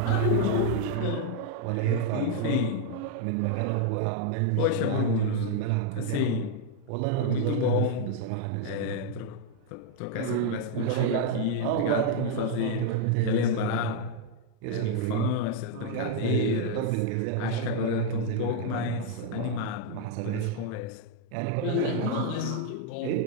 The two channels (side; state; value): both; different; correlation 0.00